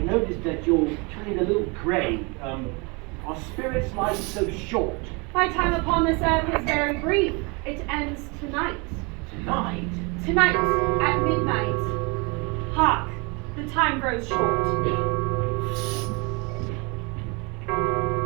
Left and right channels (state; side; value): quieter; left; 29.8 dB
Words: that you're turning a little grey. Are spirits' lives so short? My time upon this earth is very brief. It ends tonight. Tonight? Tonight, at midnight. Hark, the time grows short.